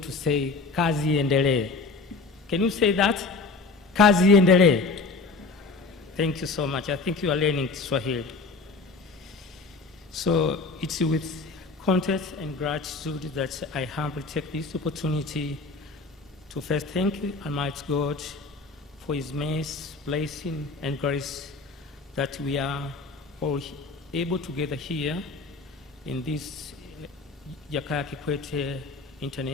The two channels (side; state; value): right; quieter; 3.9 dB